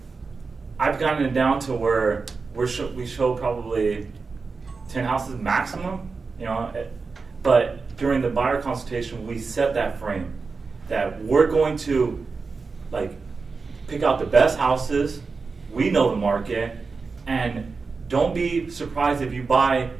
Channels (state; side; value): quieter; left; 4.5 dB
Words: I've gotten it down to where we show probably 10 houses maximum, but during the buyer consultation, we set that frame that we're going to like pick out the best houses. We know the market, and don't be surprised if you buy,